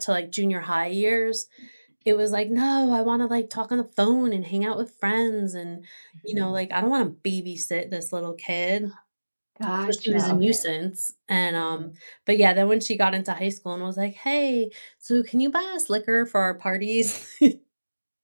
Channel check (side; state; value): both; inverted; correlation -1.00